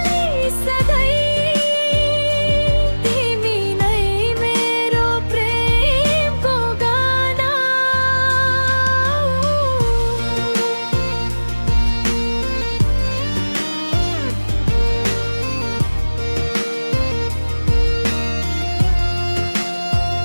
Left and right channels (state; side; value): inverted; both; correlation -1.00